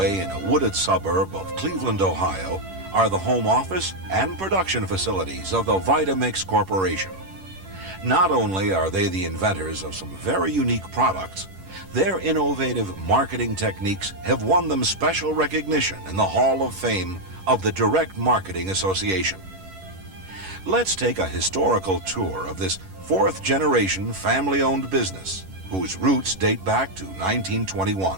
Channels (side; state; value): left; late; 11 ms